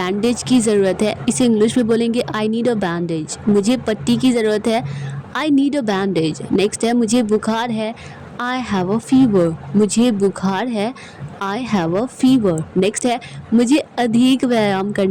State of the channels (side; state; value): both; identical; correlation 1.00